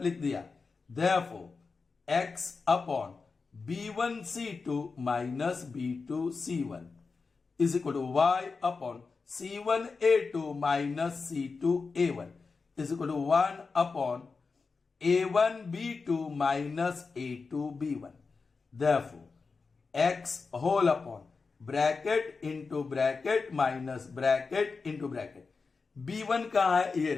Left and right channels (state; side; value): quieter; right; 4.6 dB